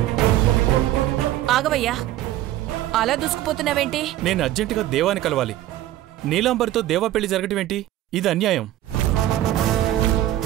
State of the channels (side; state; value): left; quieter; 14.0 dB